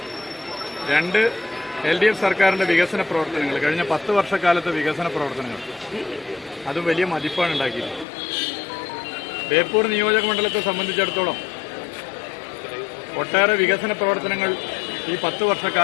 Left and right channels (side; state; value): right; drops out; at 8.1 s